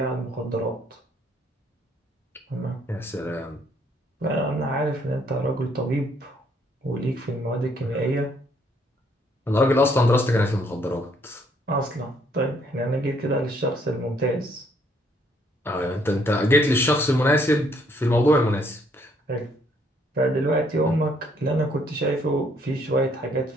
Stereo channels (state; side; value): normal; both; correlation 0.67